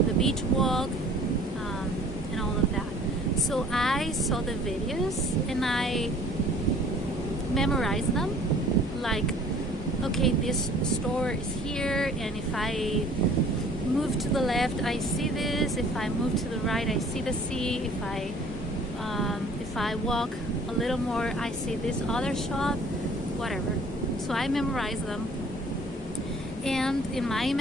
the beach walk, and all of that. So I saw the videos and I memorized them, like, okay, this store is here, and if I move to the left I see this, if I move to the right I see the sea, if I walk a little more I see this other shop, whatever. So I memorized them, and in my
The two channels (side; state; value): both; normal; correlation 0.52